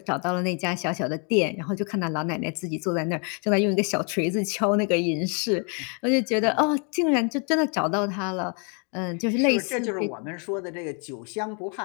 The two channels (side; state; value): right; quieter; 37.6 dB